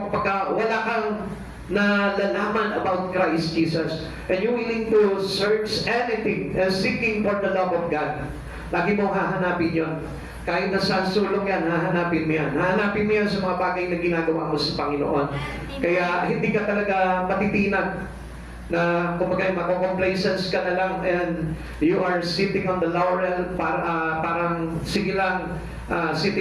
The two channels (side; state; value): both; identical; correlation 1.00